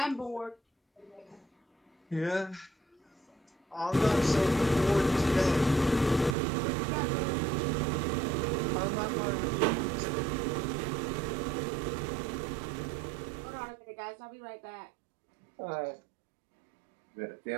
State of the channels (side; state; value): left; drops out; at 6.4 s